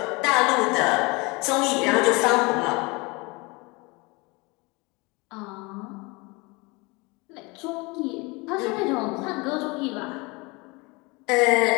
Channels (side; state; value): right; quieter; 26.3 dB